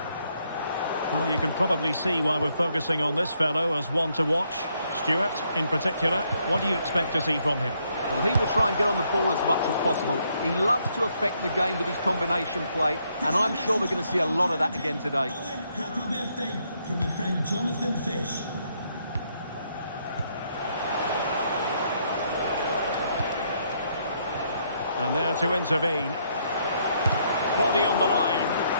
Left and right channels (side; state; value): both; inverted; correlation -0.73